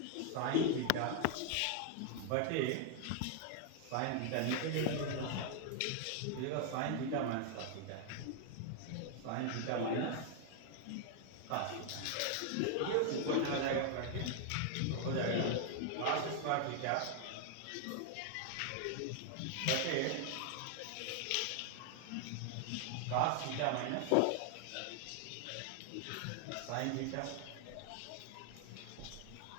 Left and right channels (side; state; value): both; different; correlation 0.00